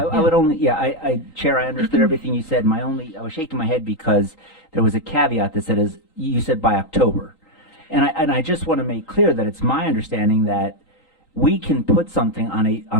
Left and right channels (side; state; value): right; late; 3.8 ms